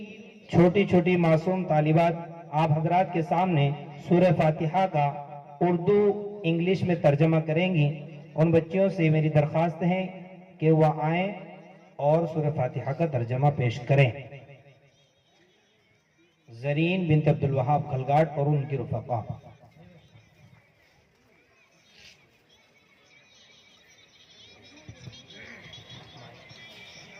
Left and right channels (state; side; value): identical; both; correlation 1.00